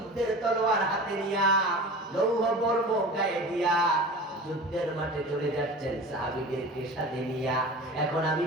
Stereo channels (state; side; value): normal; both; correlation 0.36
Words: তলোয়ার হাতে নিয়া, লৌহ বর্ম গায়ে দিয়া যুদ্ধের মাঠে চলে যাচ্ছেন সাহাবীদেরকে সাথে নিয়া। এখন আমি